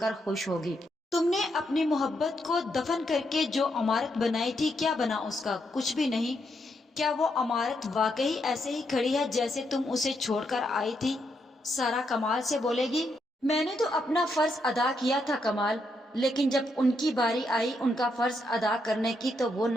खुश होगी। तुमने अपनी मोहब्बत को दफन करके जो इमारत बनाई थी, क्या बना उसका? कुछ भी नहीं। क्या वो इमारत वाकई ऐसे ही खड़ी है जैसे तुम उसे छोड़कर आई थी? सारा कमाल से बोलेगी, मैंने तो अपना फर्ज अदा किया था कमाल, लेकिन जब उनकी बारी आई उनका फर्ज अदा करने की तो वो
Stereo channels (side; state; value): both; normal; correlation 0.79